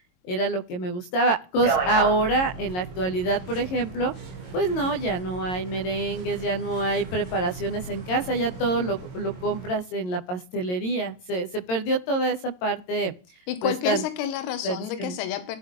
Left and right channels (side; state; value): right; late; 22 ms